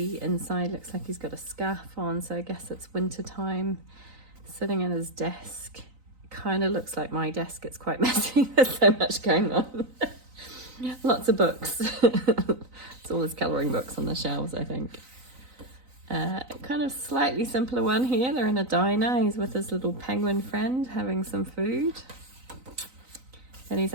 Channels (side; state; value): left; late; 3.9 ms